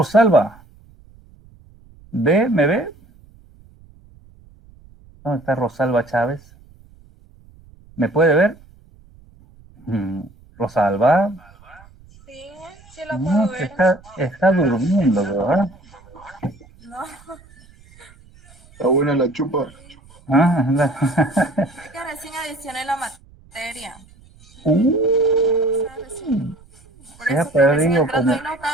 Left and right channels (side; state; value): right; noise; rumble, 26 dB below the sound